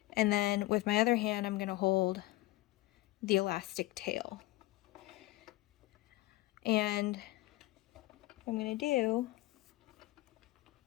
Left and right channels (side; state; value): right; quieter; 18.7 dB